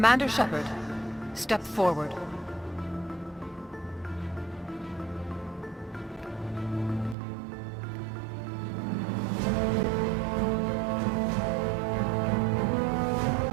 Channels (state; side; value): drops out; left; at 7.2 s